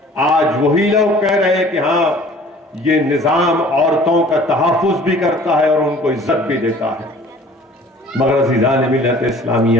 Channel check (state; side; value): normal; both; correlation 0.50